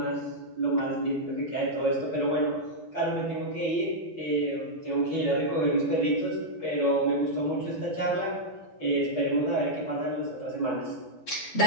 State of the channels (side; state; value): right; late; 12 ms